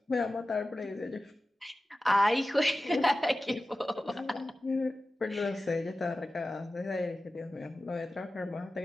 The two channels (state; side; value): normal; both; correlation 0.95